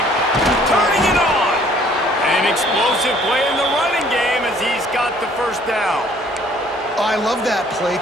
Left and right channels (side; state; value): both; normal; correlation 0.58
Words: Turning it on. An explosive play in the running game as he's got the first down. I love that play